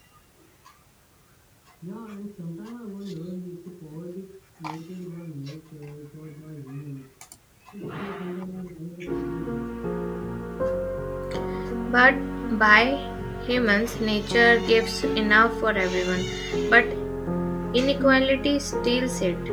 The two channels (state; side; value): identical; both; correlation 1.00